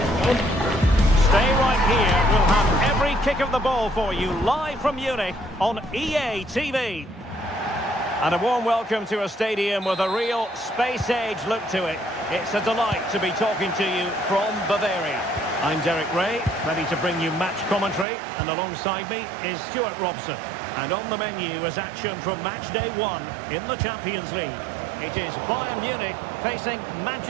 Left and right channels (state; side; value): drops out; left; at 18.1 s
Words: Stay right here. We'll have every kick of the ball for you live from Munich on EA TV. And a warm welcome to a stadium with a real space-age look to it. It's a delight to be talking to you from Bavaria. I'm Derek Ray, ready to bring you match commentary, and alongside me is Stuart Robson. And on the menu is action from match day 1 in the Champions League. It is Bayern Munich facing